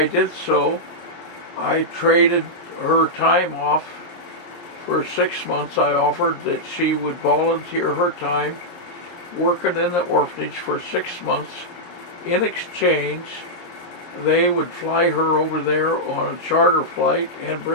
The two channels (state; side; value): late; right; 23 ms